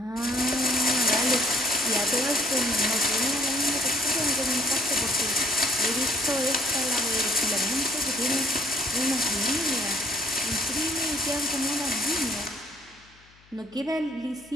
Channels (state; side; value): noise; left; hum, 29 dB below the sound